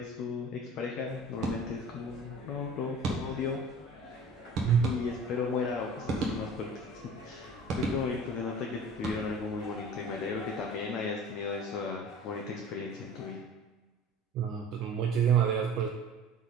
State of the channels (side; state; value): both; normal; correlation 0.43